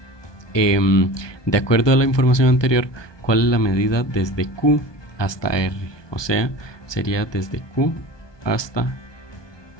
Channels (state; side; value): late; right; 1.2 ms